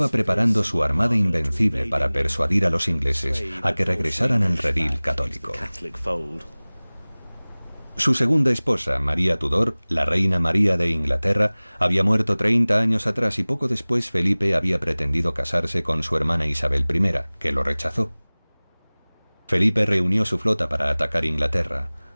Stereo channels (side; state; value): both; inverted; correlation -1.00